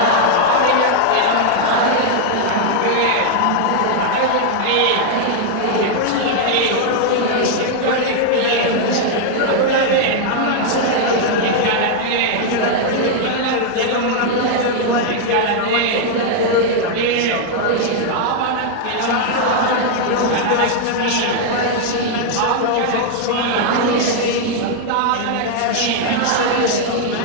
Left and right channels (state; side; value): different; both; correlation 0.00